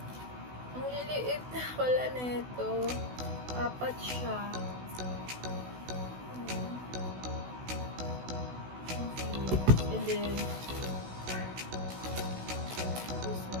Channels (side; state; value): left; late; 16 ms